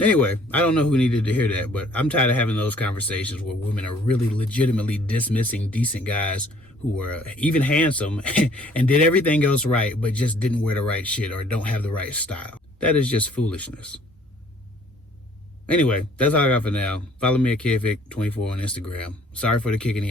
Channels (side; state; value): both; normal; correlation 0.58